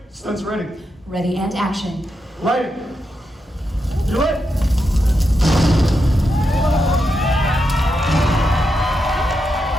Stunt's ready. Ready and action. Light. You lit?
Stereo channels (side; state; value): both; normal; correlation 0.85